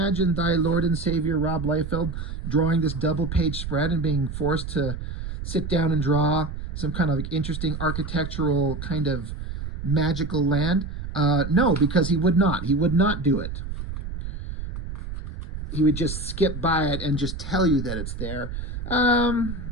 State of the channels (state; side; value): noise; right; rumble, 7 dB below the sound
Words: thy Lord and Savior Rob Liefeld drawing this double page spread and being forced to sit down and draw some kind of interesting architectural kind of magical land? No, because he would not. He would not do it. He would just skip by it and just tell you that it's there.